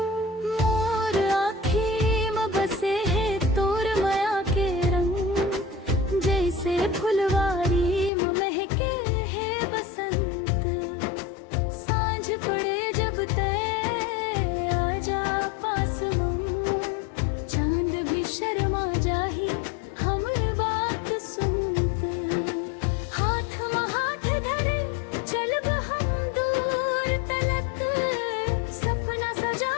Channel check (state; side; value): drops out; right; at 8.1 s